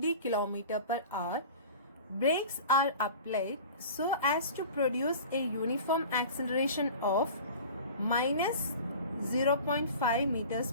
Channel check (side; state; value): both; inverted; correlation -0.39